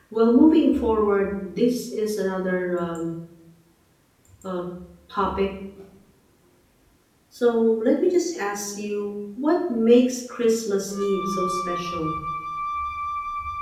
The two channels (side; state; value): both; identical; correlation 1.00